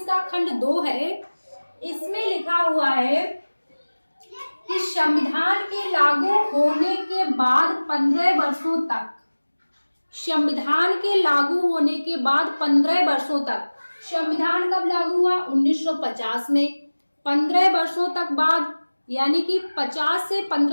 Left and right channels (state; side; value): inverted; both; correlation -1.00